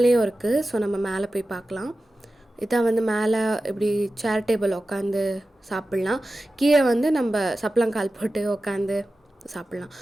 இருக்குது. ஸோ நம்ம மேலே போய் பார்க்கலாம். இதான் வந்து மேலே இப்படி சேர் டேபிள் உட்காந்து சாப்பிட்லாம். கீழே வந்து நம்ம சப்பளங்கால் போட்டு உட்காந்து சாப்பிட்லாம்.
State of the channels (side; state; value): both; normal; correlation 0.94